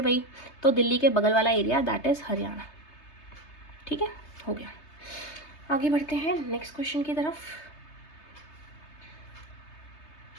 वही, तो दिल्ली के बगल वाला एरिया दैट इज हरियाणा। ठीक है, हो गया। आगे बढ़ते हैं नेक्स्ट क्वेश्चन की तरफ।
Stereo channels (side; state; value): right; late; 3.3 ms